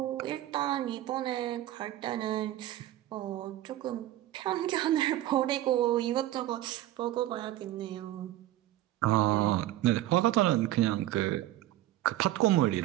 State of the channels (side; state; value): left; quieter; 14.5 dB